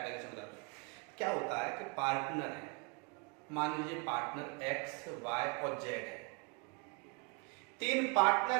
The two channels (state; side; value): quieter; left; 33.1 dB